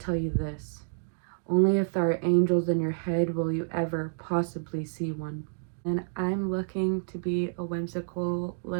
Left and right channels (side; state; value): left; silent; digital silence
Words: you this. Only if there are angels in your head will you ever possibly see one. And I'm looking to be a whimsical